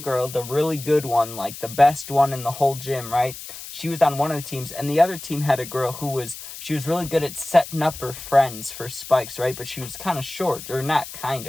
the really good one, like the best one in the whole gym, right? She was on one of the teams, and the other team had a girl she was really good at setting up her friends for spikes, right? But she was kind of short, or not kind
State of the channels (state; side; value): noise; left; hiss, 12 dB below the sound